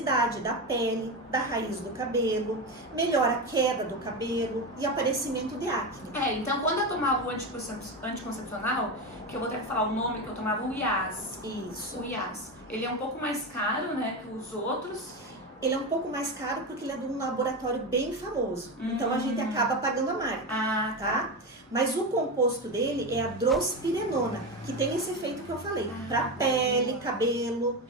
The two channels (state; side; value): normal; both; correlation 0.17